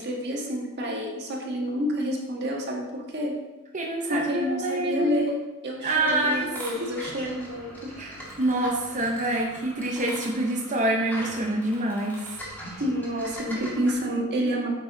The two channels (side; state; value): both; normal; correlation 0.39